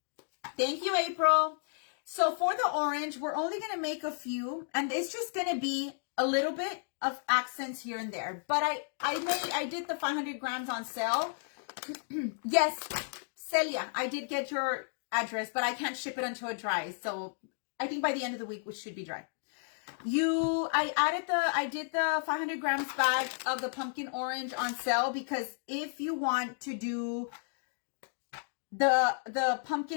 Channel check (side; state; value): right; silent; digital silence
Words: Thank you, April. So for the orange, we're only going to make a few, and it's just going to be a little bit of accents here and there. But I did the 500 grams on sale. Yes, Celia, I did get your address, but I can't ship it until it dries. So I think by the end of the week, we should be dry. I did the 500 grams bag of the pumpkin orange on sale, because if you want to do the